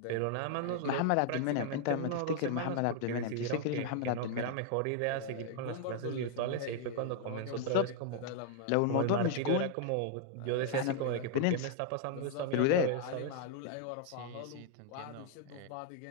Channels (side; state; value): both; different; correlation 0.00